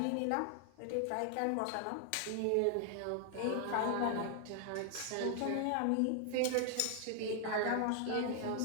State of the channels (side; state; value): both; different; correlation 0.00